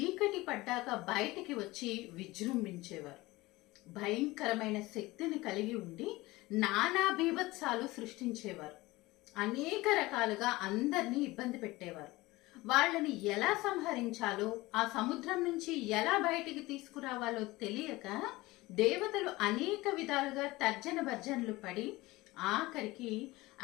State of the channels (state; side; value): quieter; right; 20.2 dB